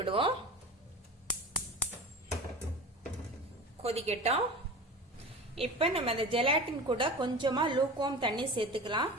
கொதிக்கட்டும். இப்ப நம்ம அந்த ஜெலாட்டின் கூட கொஞ்சமா லூக்வார்ம் தண்ணி சேர்த்துக்கலாம்.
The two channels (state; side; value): normal; both; correlation 0.34